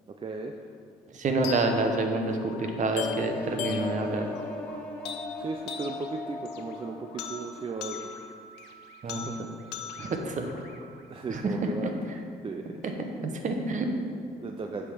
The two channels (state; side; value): normal; both; correlation 0.49